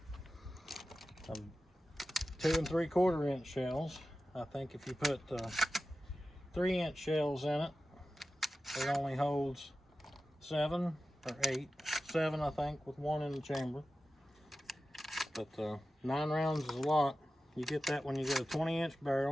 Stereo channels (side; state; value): both; normal; correlation 0.94